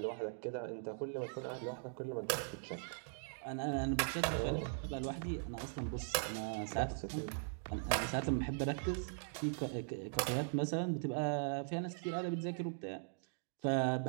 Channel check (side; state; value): left; silent; digital silence